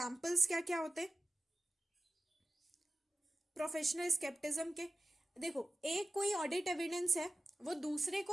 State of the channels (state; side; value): normal; both; correlation 0.94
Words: क्या क्या होते हैं प्रोफेशनल स्केप्टिज्म के, देखो, एक कोई ऑडिट एविडेंस है, वो दूसरे